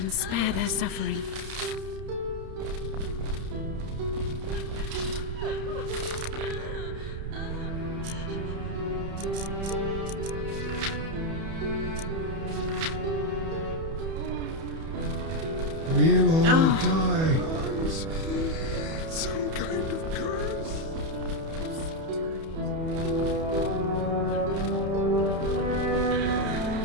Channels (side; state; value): left; late; 31 ms